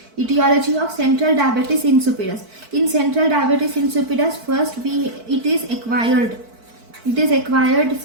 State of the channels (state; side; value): late; left; 4.5 ms